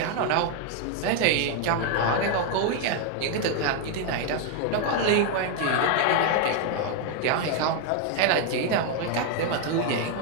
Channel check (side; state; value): both; different; correlation 0.00